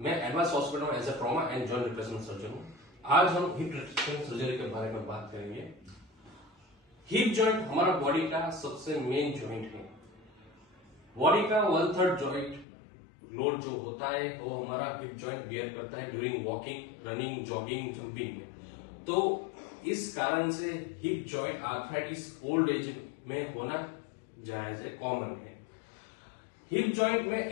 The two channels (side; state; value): right; drops out; at 12.7 s